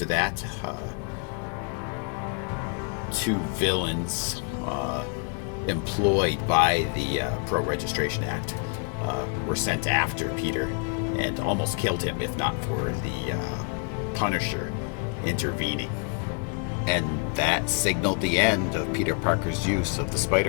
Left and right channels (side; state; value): right; quieter; 35.5 dB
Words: that, two villains employed by the Pro-Registration Act were sent after Peter and almost killed him, if not for the Punisher intervening. And that signaled the end of Peter Parker's use of the